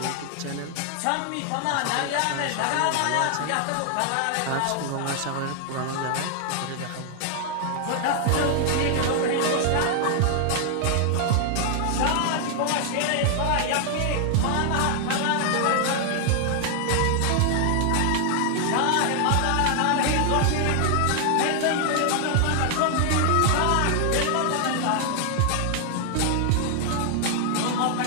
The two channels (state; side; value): different; both; correlation 0.00